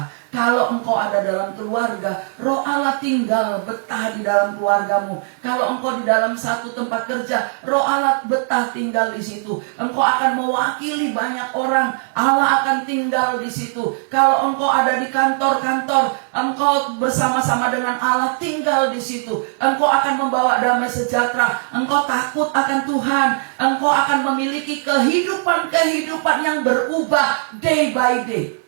Kalau engkau ada dalam keluarga, Roh Allah tinggal betah di dalam keluargamu. Kalau engkau di dalam satu tempat kerja, Roh Allah betah tinggal di situ. Engkau akan mewakili banyak orang, Allah akan tinggal di situ. Kalau engkau ada di kantor-kantor, engkau bersama-sama dengan Allah tinggal di situ. Engkau akan membawa damai sejahtera. Engkau takut akan Tuhan. Engkau akan memiliki kehidupan yang berubah day by day.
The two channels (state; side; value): silent; left; 66 dB below the other